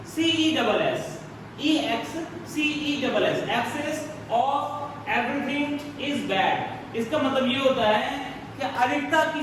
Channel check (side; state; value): both; identical; correlation 1.00